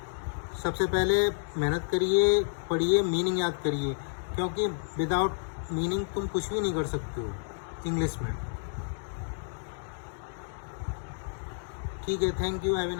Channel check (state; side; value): silent; right; digital silence